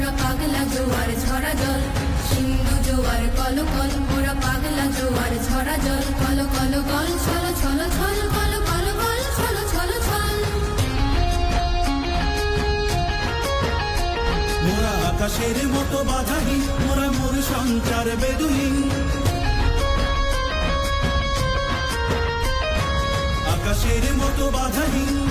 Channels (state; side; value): identical; both; correlation 1.00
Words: পাগলা জোয়ার ঝরা জল। সিন্ধু জোয়ার কলকল, মোরা পাগলা জোয়ার ঝরা জল। কল কল গল ছল ছল ছল, কল কল গল ছল ছল ছল। মোরা আকাশের মতো বাধাহীন, মোরা মোর সঞ্চার বেদুহীন। আকাশের মতো বাধাহীন,